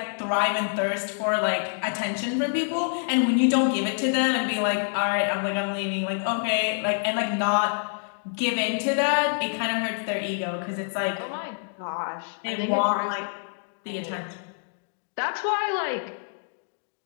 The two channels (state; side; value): silent; right; digital silence